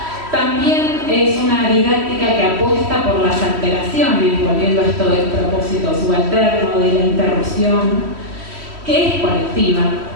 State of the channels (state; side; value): late; left; 3.1 ms